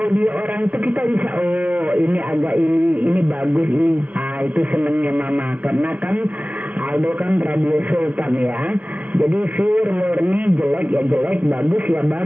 orang itu kita bisa, oh ini agak ini bagus ini. Itu senengnya Mama, karena kan Aldo kan radio Sultan ya. Jadi pure murni, jelek ya jelek, bagus ya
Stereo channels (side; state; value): left; late; 0.068 ms